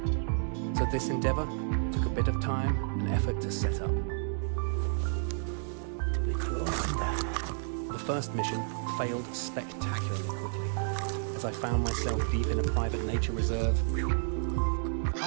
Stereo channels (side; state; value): left; silent; digital silence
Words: So this endeavour took a bit of time and effort to set up. The first mission failed spectacularly quickly, as I found myself deep in a private nature reserve,